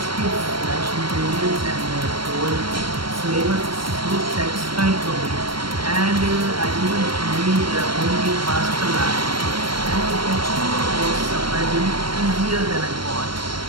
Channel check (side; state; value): left; late; 0.73 ms